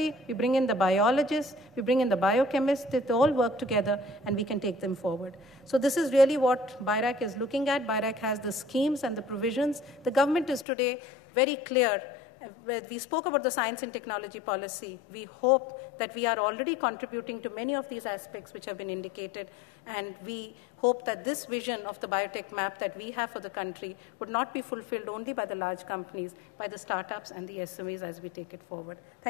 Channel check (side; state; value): right; drops out; at 10.7 s